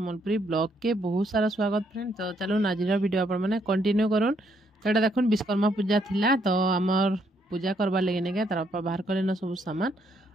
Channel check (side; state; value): both; normal; correlation 0.72